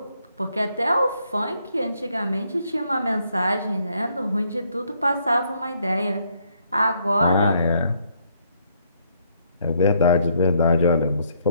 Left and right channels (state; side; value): inverted; both; correlation -0.71